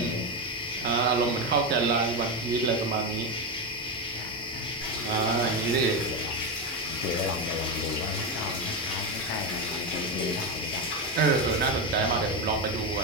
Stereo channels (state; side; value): normal; both; correlation 0.11